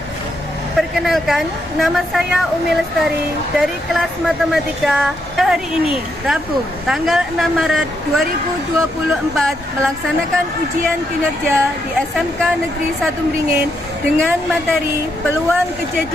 Perkenalkan, nama saya Umi Lestari dari kelas Matematika. Hari ini, Rabu, tanggal 6 Maret 2024, melaksanakan ujian kinerja di SMK Negeri 1 Beringin dengan materi peluang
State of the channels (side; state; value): both; normal; correlation 0.79